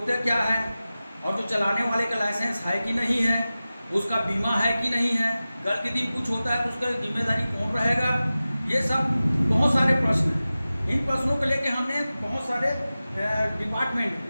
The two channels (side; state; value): both; inverted; correlation -0.96